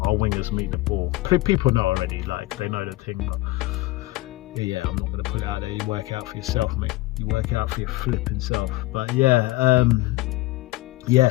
our wingers meet the ball. People know already, like, they know the thing, but yeah, I'm not going to put it out there. You work it out for yourself, mate. You work it out for your flipping self. But yeah, yeah.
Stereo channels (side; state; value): right; quieter; 19.1 dB